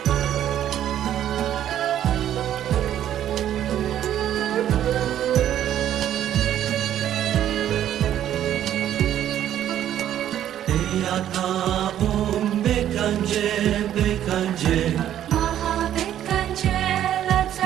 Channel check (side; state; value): left; quieter; 11.2 dB